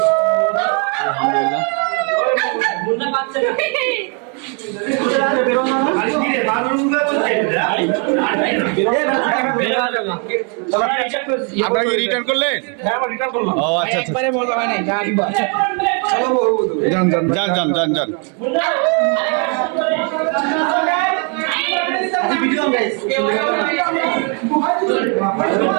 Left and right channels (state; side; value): quieter; left; 37.6 dB